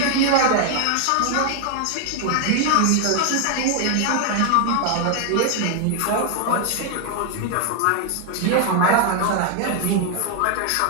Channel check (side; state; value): both; different; correlation 0.00